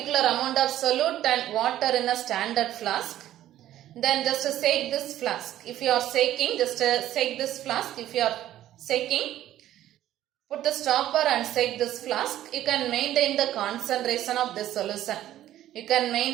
amount of solute and water in a standard flask. Then just shake this flask. If you are shaking, just shake this flask. If you are shaking, put the stopper and shake this flask. You can maintain the concentration of this solution. You can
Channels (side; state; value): left; quieter; 12.9 dB